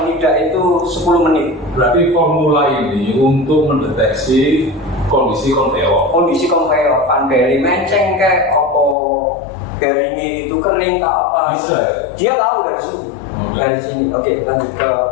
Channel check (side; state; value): right; drops out; at 9.0 s